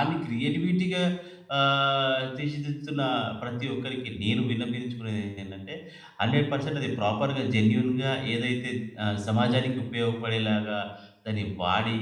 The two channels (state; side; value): identical; both; correlation 1.00